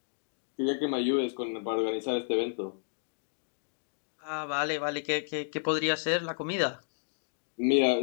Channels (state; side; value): silent; right; digital silence